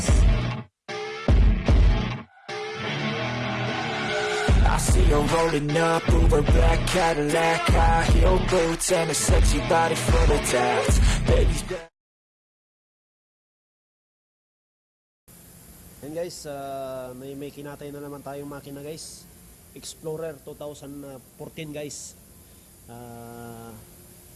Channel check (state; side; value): identical; both; correlation 1.00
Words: I see her rolling up, Uber black Cadillac, high heel boots and a sexy body full of tats. Baby's back. Yan guys, may kinatay na naman tayong makina guys. Explorer 2014 guys.